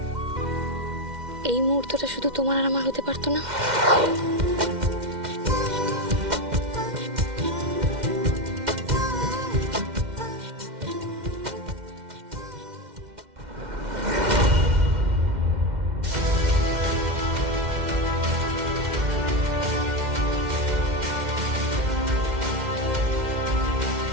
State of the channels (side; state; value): left; late; 2.1 ms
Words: এই মুহূর্তটা শুধু তোমার আর আমার হতে পারতো না?